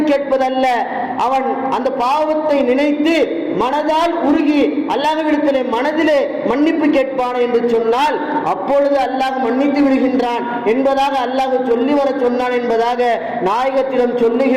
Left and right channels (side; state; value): both; identical; correlation 1.00